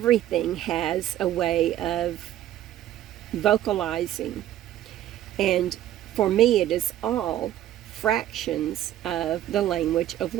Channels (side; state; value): left; quieter; 12.6 dB